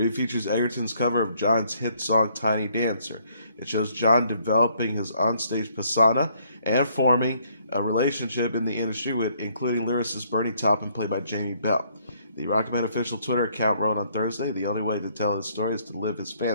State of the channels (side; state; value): both; inverted; correlation -0.67